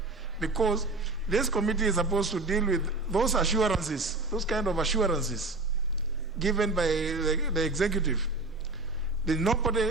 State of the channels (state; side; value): quieter; left; 3.1 dB